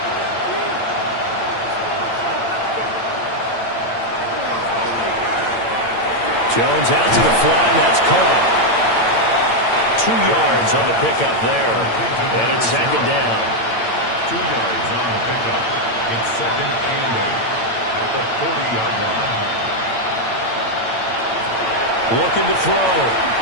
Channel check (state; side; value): late; right; 8.8 ms